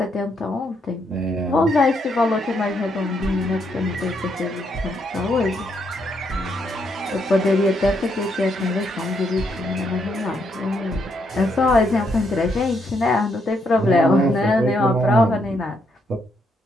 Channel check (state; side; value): normal; both; correlation 0.76